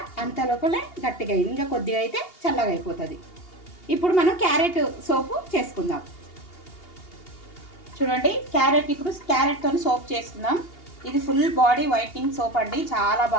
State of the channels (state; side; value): late; right; 2.8 ms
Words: అంత లోపలే గట్టిగా అయింది. ఇంకా కొద్దిగా అయితే చల్లగా అయిపోతుంది. ఇప్పుడు మనం క్యారెట్ సోపు చేసుకుందాం. చూడండి ఇప్పుడు క్యారెట్తో సోప్ చేసుకుందాం. ఇది ఫుల్ బాడీ వైట్నింగ్ సోప్ అండి, చాలా